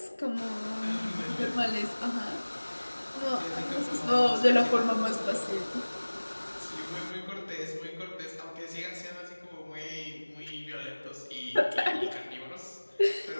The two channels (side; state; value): both; inverted; correlation -1.00